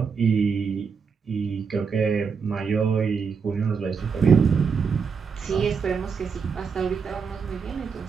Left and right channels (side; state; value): left; quieter; 5.8 dB